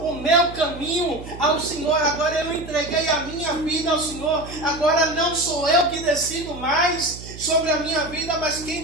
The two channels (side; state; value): right; noise; hum, 14 dB below the sound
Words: meu caminho ao Senhor, agora eu entreguei a minha vida ao Senhor. Agora não sou eu que decido mais sobre a minha vida, mas quem